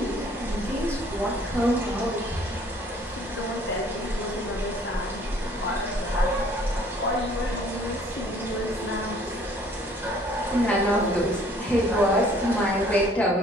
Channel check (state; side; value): normal; both; correlation 0.57